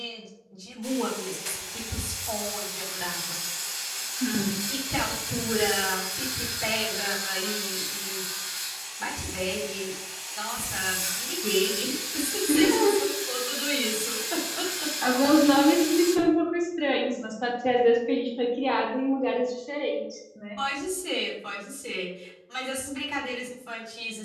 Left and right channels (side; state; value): both; identical; correlation 1.00